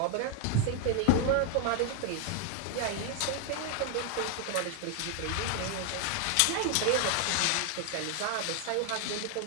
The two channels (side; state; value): both; different; correlation 0.00